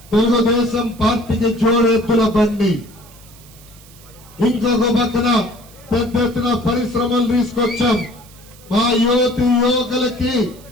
తెలుగుదేశం పార్టీకి జోడెత్తుల బండి. ఇంకొక పక్కన పెద్ద ఎత్తున పరిశ్రమలు తీసుకొచ్చాం. మా యువకులకి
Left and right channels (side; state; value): right; noise; hiss, 23 dB below the sound